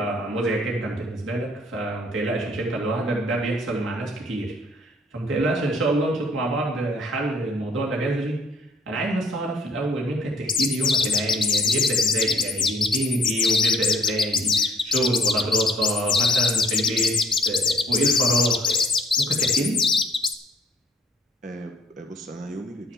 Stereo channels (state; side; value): normal; both; correlation 0.61